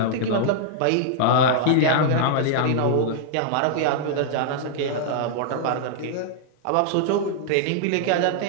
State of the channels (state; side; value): different; both; correlation -0.01